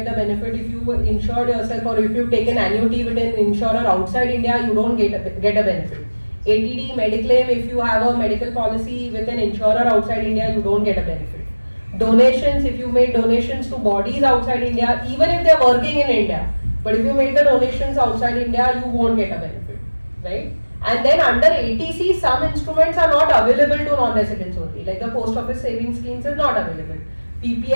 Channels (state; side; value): inverted; both; correlation -1.00